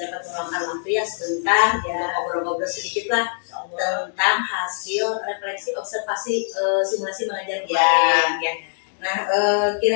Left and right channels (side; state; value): right; silent; digital silence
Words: dapat meluangkan waktu ya sebentar ya ngobrol-ngobrol sedikit lah tentang hasil refleksi observasi simulasi mengajar kemarin ya. Nah